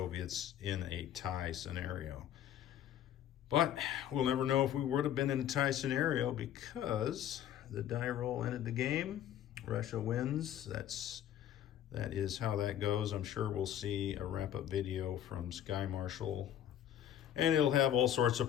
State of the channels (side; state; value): right; quieter; 10.8 dB